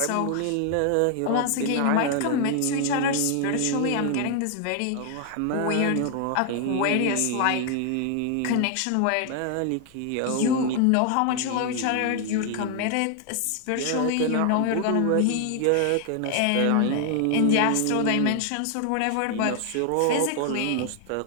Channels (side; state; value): both; different; correlation 0.00